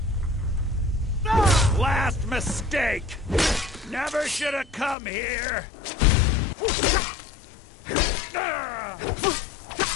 Last mistake! Never should have come here!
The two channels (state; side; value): drops out; right; at 5.0 s